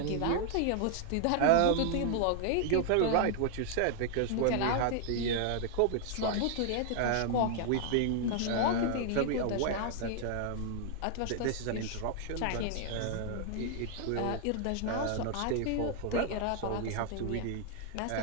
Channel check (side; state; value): both; different; correlation 0.00